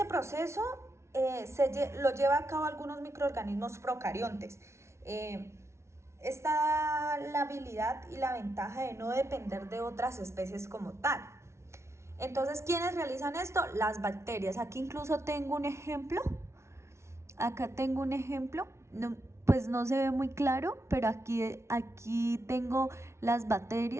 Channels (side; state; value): left; late; 0.13 ms